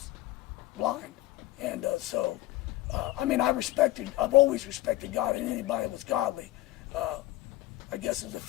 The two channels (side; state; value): right; quieter; 17.0 dB